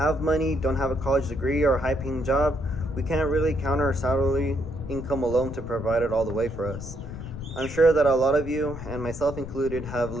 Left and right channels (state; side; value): noise; left; rumble, 10 dB below the sound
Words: a college degree or a high paying job, we can't really count our salary income alone to provide it all the way for us. I'm sure that a lot of you, and myself included, have